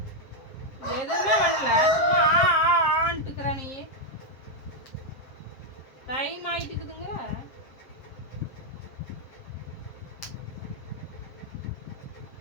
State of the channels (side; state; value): right; late; 7.6 ms